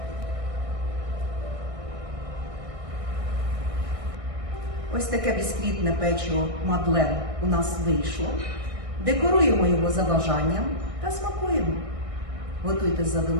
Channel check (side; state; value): left; late; 1.6 ms